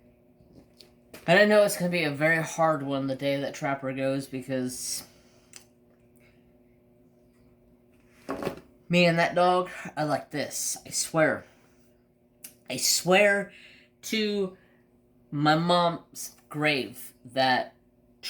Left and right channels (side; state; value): both; identical; correlation 1.00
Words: And I know it's going to be a very hard one the day that Trapper goes, because me and that dog are like this. I swear. I swear to my mom's grave that